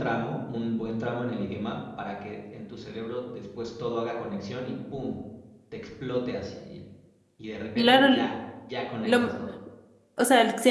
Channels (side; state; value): both; identical; correlation 1.00